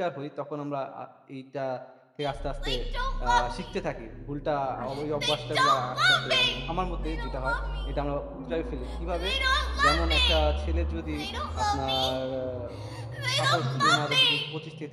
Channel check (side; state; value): both; identical; correlation 1.00